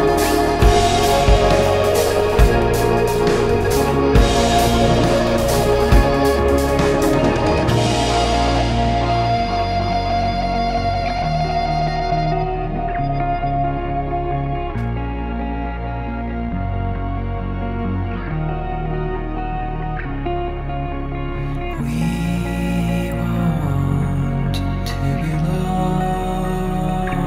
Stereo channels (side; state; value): both; identical; correlation 1.00